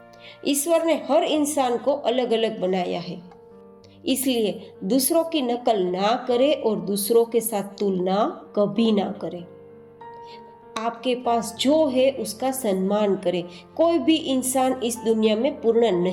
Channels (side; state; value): both; identical; correlation 1.00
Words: ईश्वर ने हर इंसान को अलग अलग बनाया है, इसलिए दूसरों की नकल ना करें और दूसरों के साथ तुलना कभी ना करें। आपके पास जो है उसका सम्मान करें। कोई भी इंसान इस दुनिया में पूर्ण